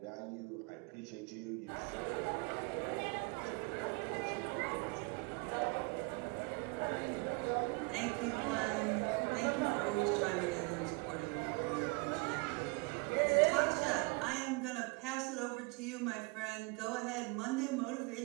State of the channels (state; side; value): quieter; left; 27.8 dB